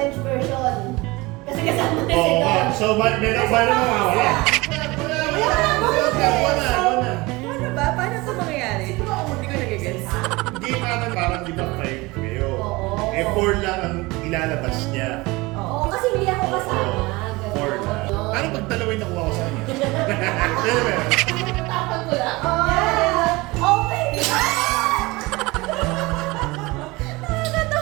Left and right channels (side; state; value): left; quieter; 22.7 dB